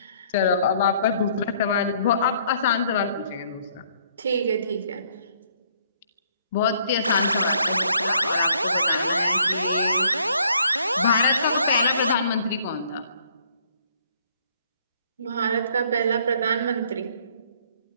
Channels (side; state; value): both; inverted; correlation -0.64